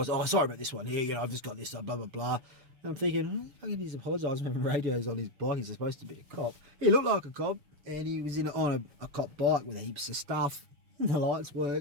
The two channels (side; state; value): left; late; 7.0 ms